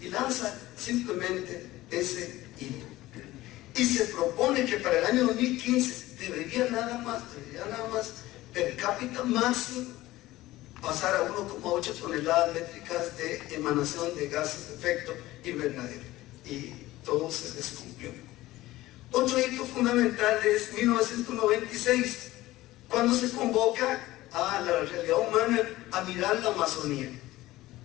y lanza simplemente ese hito. Y se propone que para el año 2015 debería nada más per cápita máximo pasar a 1,8 toneladas métricas de emanación de gases de efecto invernadero, y todo se descumplió. Otro hito fundamental es 1996, cuando se convoca a la realidad humana a mirar la Amazonía.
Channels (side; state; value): right; quieter; 17.1 dB